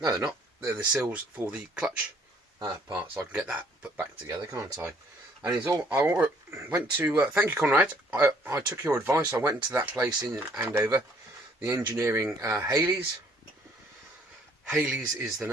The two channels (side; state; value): both; normal; correlation 0.61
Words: they're not. They're the seals for the clutch part, so I can get that put back together, can't I? And it's all. I went to. Thank you, Conrad. I took your advice. I went to that place in Andover, the engineering Haley's. Haley's is the